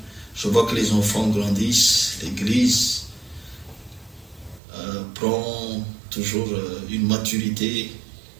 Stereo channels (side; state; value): left; drops out; at 4.6 s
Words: je vois que les enfants grandissent, l'église prend toujours une maturité